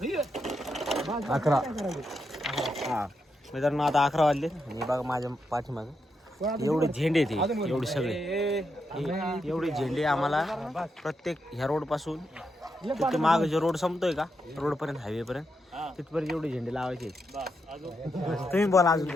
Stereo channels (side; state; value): both; normal; correlation 0.83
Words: 11. हां मित्रांनो आता 11 वाजले आणि बघा माझ्या पाठीमागं एवढे झेंडे ते एवढे सगळे एवढे झेंडे आम्हाला प्रत्येक ह्या रोडपासून तिथे माग जो रोड संपतोय का रोडपर्यंत हायवेपर्यंत तिथपर्यंत एवढे झेंडे लावायचे. तुम्ही बोला अजून